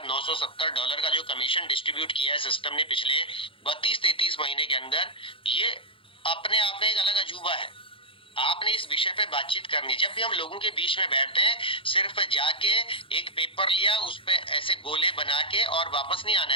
डॉलर का जो कमीशन डिस्ट्रीब्यूट किया है सिस्टम ने पिछले 32-33 महीने के अंदर, ये अपने आप में एक अलग अजूबा है। आपने इस विषय पे बातचीत करनी। जब भी हम लोगों के बीच में बैठते हैं, सिर्फ जाके एक पेपर लिया, उस पे ऐसे गोले बना के और वापस नहीं आना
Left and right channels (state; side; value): late; right; 0.25 ms